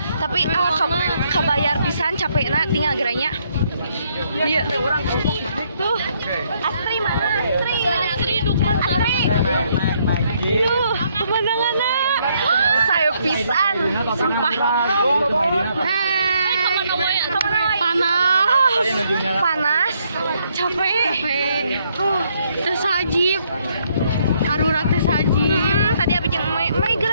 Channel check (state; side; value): inverted; both; correlation -0.71